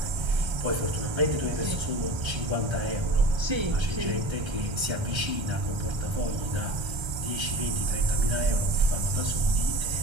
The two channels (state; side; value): late; left; 1.3 ms